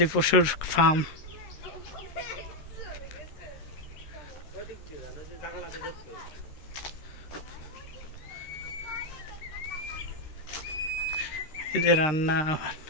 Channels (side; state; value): right; late; 13 ms